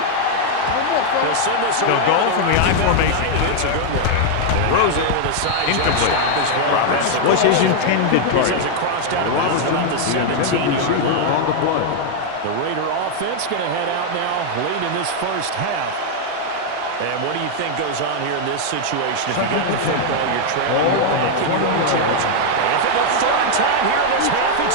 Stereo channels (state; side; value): different; both; correlation 0.00